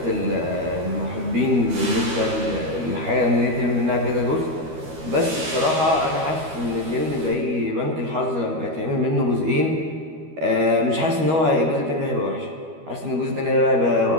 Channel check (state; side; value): late; left; 13 ms